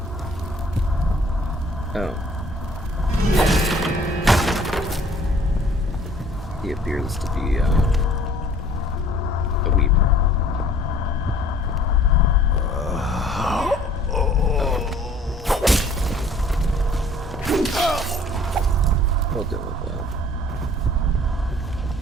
Oh. He appears to be a weeper. We'll deal with that.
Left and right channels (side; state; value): both; normal; correlation 0.54